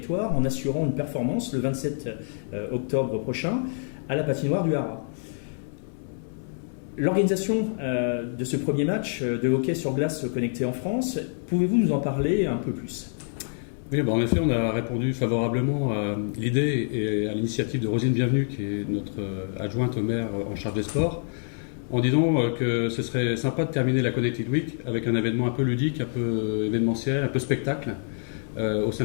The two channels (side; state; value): right; silent; digital silence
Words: en assurant une performance le 27 octobre prochain à la patinoire du Haras. L'organisation de ce premier match de hockey sur glace connecté en France, pouvez-vous nous en parler un peu plus ? Oui, en effet, on a répondu favorablement à l'idée et à l'initiative de Rosine Bienvenue, qui est notre adjointe au maire en charge des sports, en disant que ce serait sympa de terminer la Connected Week avec un événement un peu ludique, un peu événementiel, un peu spectacle au sein